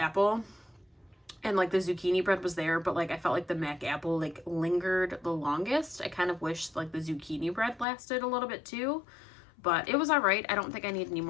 And like the zucchini bread was there, but like I felt like the Mac apple like lingered the longest. I kind of wish like the zucchini bread lasted a little bit too, but it was all right. I don't think I need any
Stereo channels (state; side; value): drops out; right; at 7.9 s